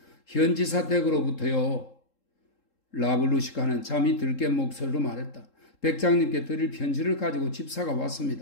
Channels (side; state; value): right; late; 3.7 ms